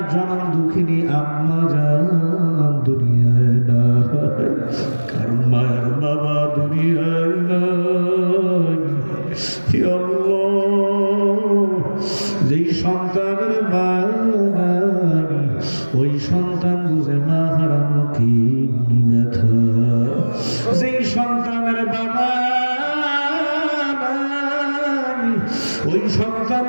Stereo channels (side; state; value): both; inverted; correlation -1.00